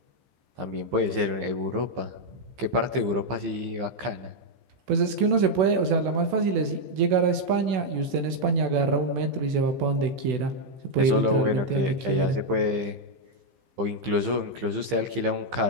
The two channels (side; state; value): left; late; 15 ms